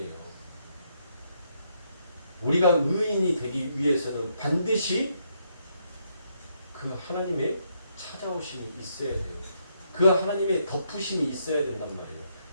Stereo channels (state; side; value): inverted; both; correlation -0.75